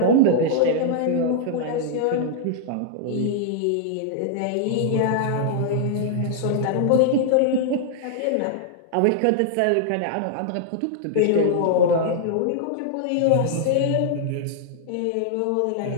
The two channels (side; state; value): both; different; correlation -0.01